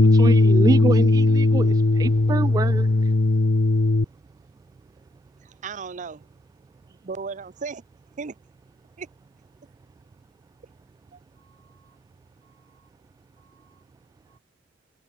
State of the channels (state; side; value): normal; both; correlation 0.78